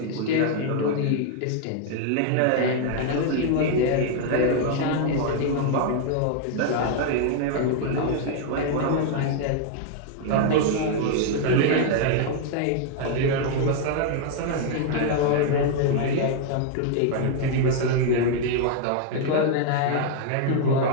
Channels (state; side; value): different; both; correlation 0.00